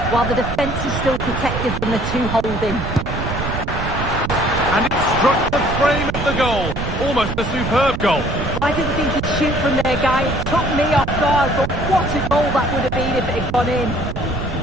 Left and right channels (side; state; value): right; noise; rumble, 5 dB below the sound